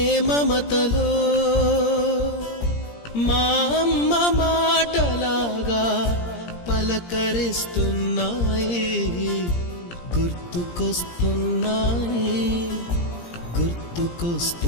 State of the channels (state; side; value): late; right; 17 ms